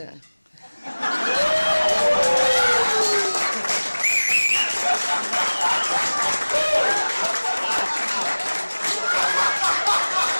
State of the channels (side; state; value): both; inverted; correlation -1.00